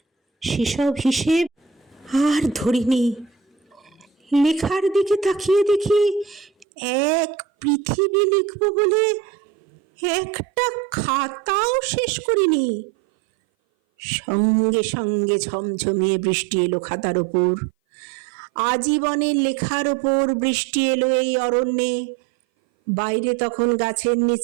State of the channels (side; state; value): left; drops out; at 6.7 s